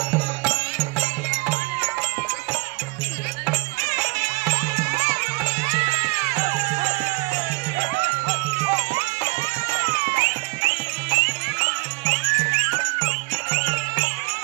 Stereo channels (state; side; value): quieter; left; 26.6 dB